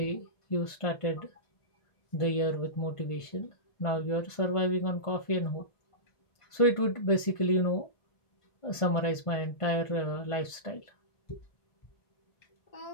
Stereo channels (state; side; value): late; right; 1.5 ms